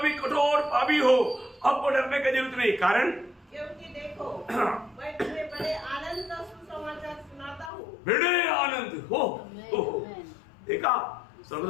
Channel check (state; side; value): drops out; right; at 7.7 s